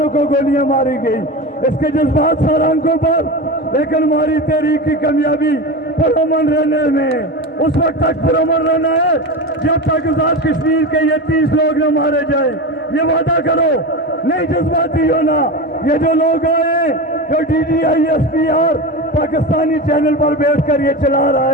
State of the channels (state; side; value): normal; both; correlation 0.24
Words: को गोलियां मारी गई, इसके जज्बात सरांकों पर, लेकिन हमारी तहरीक की कामयाबी पुरअमन रहने में। उस वक्त तक पुरअमन रहना है जब तक आजाद कश्मीर के ये 30 लोग न मारे जाए। ये वादा करो, नहीं जज्बाती होना। ये जो लोग आए, जो DGISPR पाकिस्तानी चैनल पर बैठ कर ये चला रहा